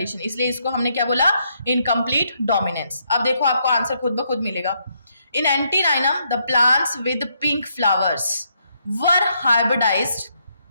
इसलिए इसको हमने क्या बोला? Incomplete dominance. अब देखो आपको आंसर खुद ब खुद मिलेगा। In antirrhinum the plants with pink flowers were hybridized.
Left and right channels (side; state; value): both; inverted; correlation -0.76